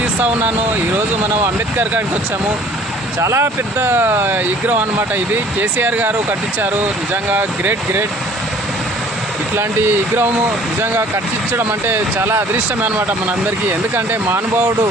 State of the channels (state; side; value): normal; both; correlation 0.53